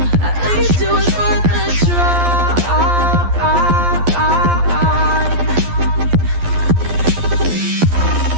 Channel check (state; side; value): late; left; 12 ms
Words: At least it was worth the try.